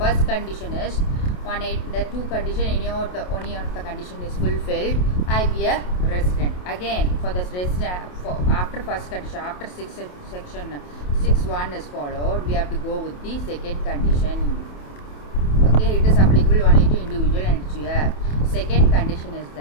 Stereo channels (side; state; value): right; late; 28 ms